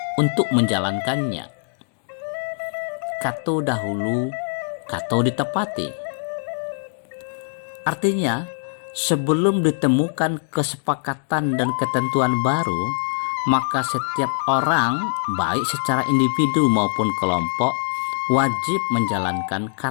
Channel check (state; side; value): silent; right; digital silence